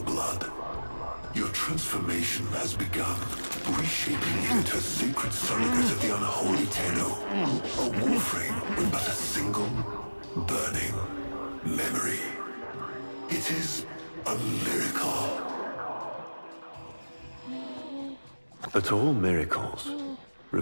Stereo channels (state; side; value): inverted; both; correlation -1.00